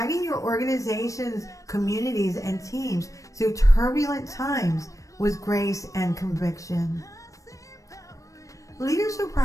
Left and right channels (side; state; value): right; late; 0.16 ms